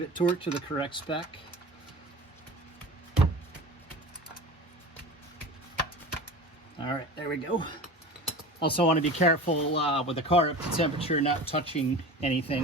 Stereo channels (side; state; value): both; normal; correlation 0.34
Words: torqued to the correct spec. All right, there we go. Also want to be careful with the car up to temperature, not touching anything